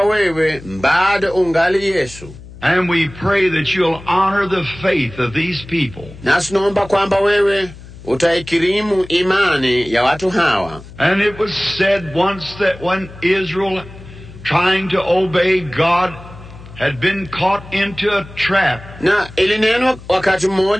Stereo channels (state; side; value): noise; left; hum, 17 dB below the sound